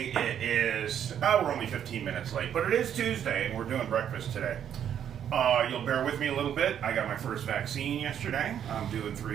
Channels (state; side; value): quieter; left; 9.3 dB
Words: It is, we're only 15 minutes late, but it is Tuesday, and we're doing breakfast today. You'll bear with me a little bit. I got my first vaccine yesterday. I'm doing